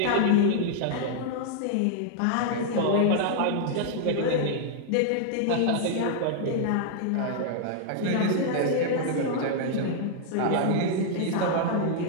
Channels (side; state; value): both; different; correlation -0.01